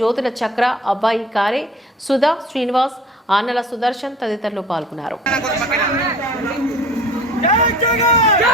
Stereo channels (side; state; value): both; normal; correlation 0.46